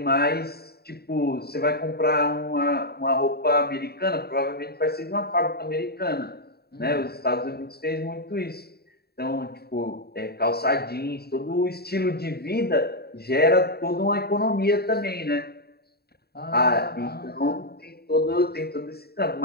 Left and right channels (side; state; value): right; late; 0.46 ms